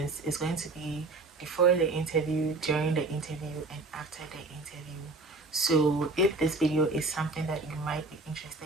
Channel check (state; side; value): quieter; left; 3.3 dB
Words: It's going to be before the interview, during the interview, and after the interview. So if this video is something that you might be